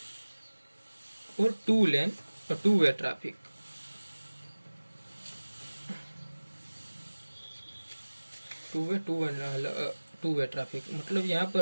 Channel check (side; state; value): both; inverted; correlation -1.00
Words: और टू लेन और to way traffic. To way traffic मतलब यहाँ